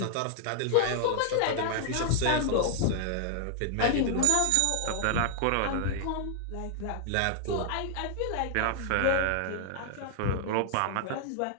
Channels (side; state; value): both; different; correlation 0.00